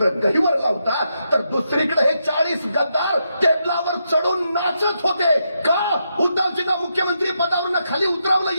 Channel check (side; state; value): both; inverted; correlation -0.83